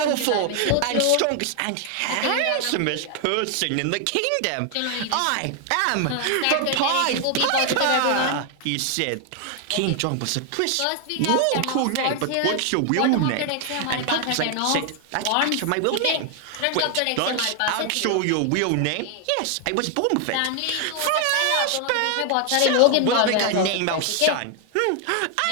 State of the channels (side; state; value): both; different; correlation 0.00